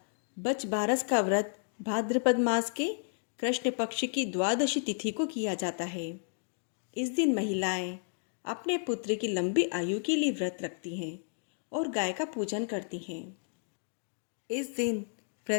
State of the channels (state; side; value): silent; right; digital silence